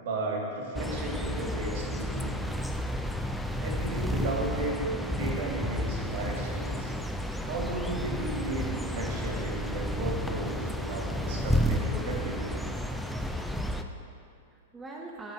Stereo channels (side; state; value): both; normal; correlation 0.47